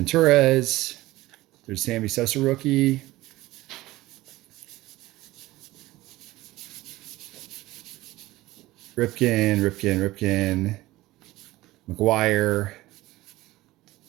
There's Sammy Sosa rookie. Ripken. McGuire.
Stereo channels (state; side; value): quieter; left; 18.0 dB